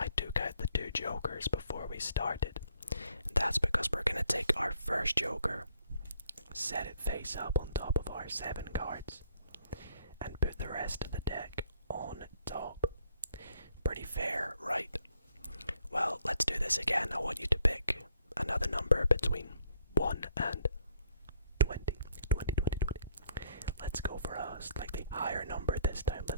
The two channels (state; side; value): inverted; both; correlation -0.66